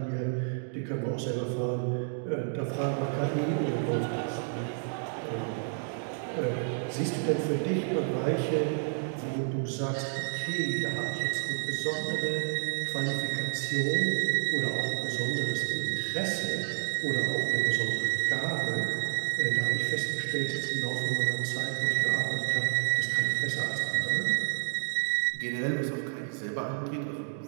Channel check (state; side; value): silent; left; digital silence